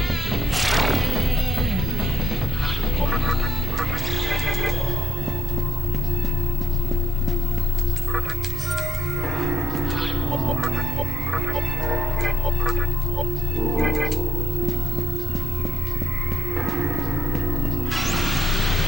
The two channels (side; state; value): both; normal; correlation 0.71